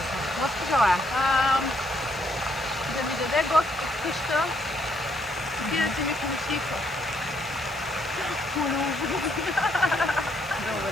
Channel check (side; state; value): left; noise; hiss, 21 dB below the sound